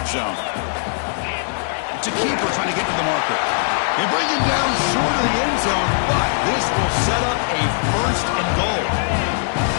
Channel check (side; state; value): right; silent; digital silence